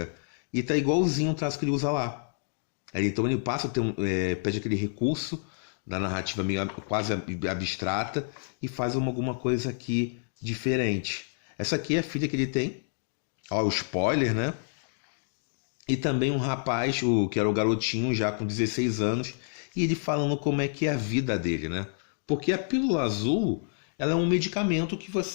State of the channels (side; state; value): right; silent; digital silence